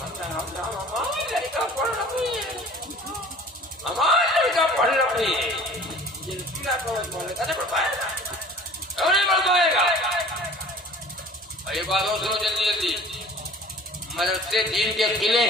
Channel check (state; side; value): normal; both; correlation 0.46